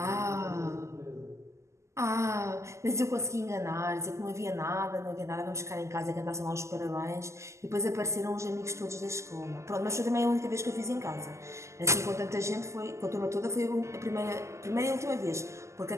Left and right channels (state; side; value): late; left; 0.13 ms